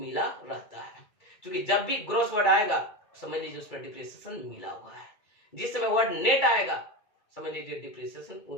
रहता है, क्योंकि जब भी ग्रॉस वर्ड आएगा समझ लीजिए उसमें डिप्रिसिएशन मिला हुआ है। जिस समय वर्ड नेट आएगा समझ लीजिए डिप्रिसिएशन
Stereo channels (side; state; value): right; late; 2.3 ms